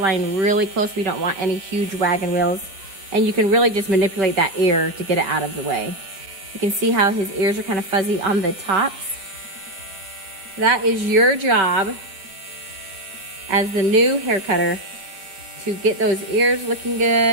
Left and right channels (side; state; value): left; late; 4.5 ms